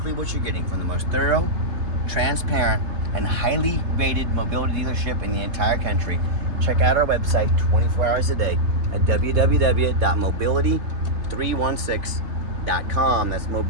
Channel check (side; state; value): left; late; 3.3 ms